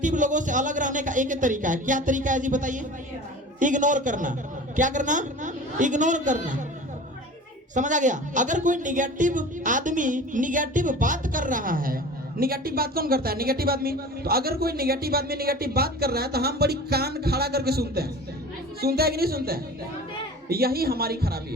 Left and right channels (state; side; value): normal; both; correlation 0.38